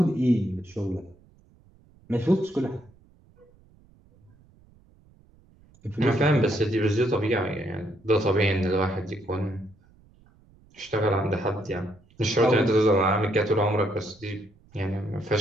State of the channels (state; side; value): noise; right; rumble, 29 dB below the sound